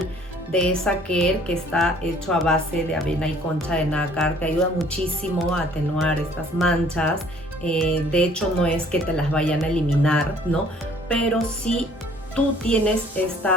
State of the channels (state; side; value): normal; both; correlation 0.57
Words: de esa care que está hecho a base de avena y concha de nácar, que ayuda muchísimo a atenuar estas manchas. De hecho, no es que te las vayan a eliminar, ¿no? Pero sí tú tienes